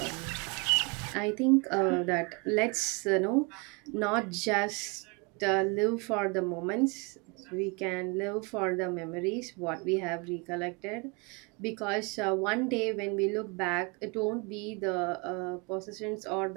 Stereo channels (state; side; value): quieter; left; 30.3 dB